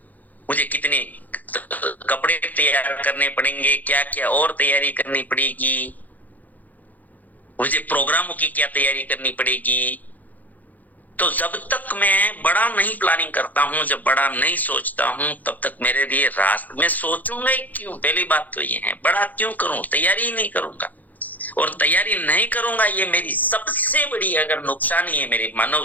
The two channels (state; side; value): late; right; 0.081 ms